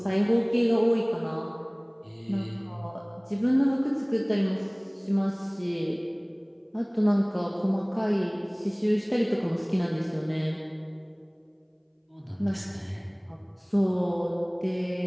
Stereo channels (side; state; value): both; identical; correlation 1.00